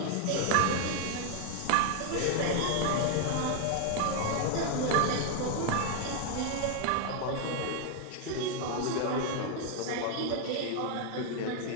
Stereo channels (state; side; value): different; both; correlation 0.00